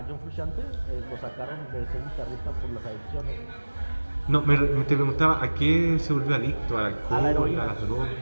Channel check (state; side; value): inverted; both; correlation -1.00